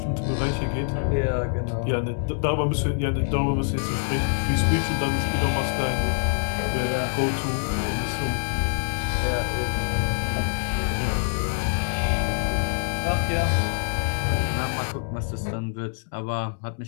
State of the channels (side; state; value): right; silent; digital silence